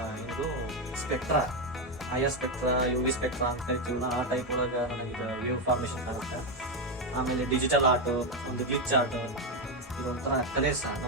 ಇದು spectra, IR spectra, UV spectra ಅಂತ ಕರಿತೀವಲ್ಲ, ಆ ಟೈಪ್ ಒಳಗ ನನಗೆ ವೇವ್ ಫಾರ್ಮೇಶನ್ ಕಾಣುತ್ತೆ. ಆಮೇಲೆ ಡಿಜಿಟಲ್ ಆರ್ಟ್, ಒಂದು ಗ್ಲಿಚ್ ಆರ್ಟ್, ಇದೊಂಥರ ಕಲೆ ಸಹ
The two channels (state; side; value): normal; both; correlation 0.07